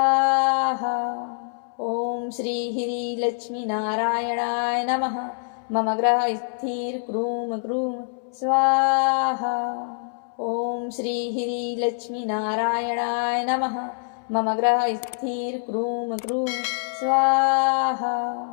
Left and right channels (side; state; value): right; silent; 62 dB below the other